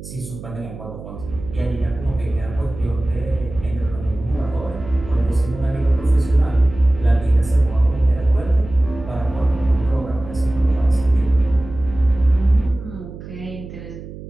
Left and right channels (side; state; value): right; noise; hum, 13 dB below the sound